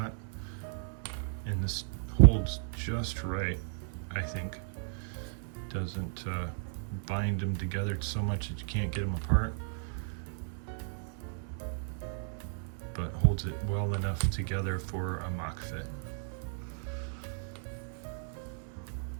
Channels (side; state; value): left; silent; 55 dB below the other